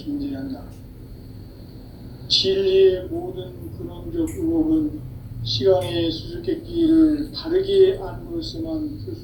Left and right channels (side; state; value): both; identical; correlation 1.00